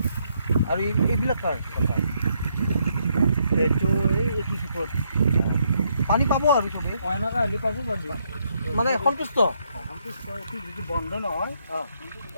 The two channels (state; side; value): inverted; both; correlation -0.75